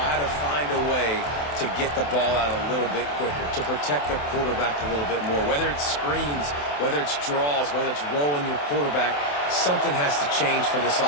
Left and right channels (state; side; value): late; right; 27 ms